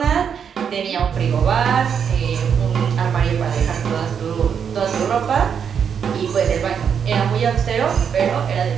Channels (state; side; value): quieter; left; 7.4 dB